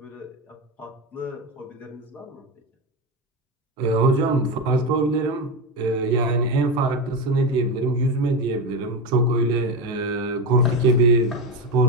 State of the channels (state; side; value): normal; both; correlation 0.16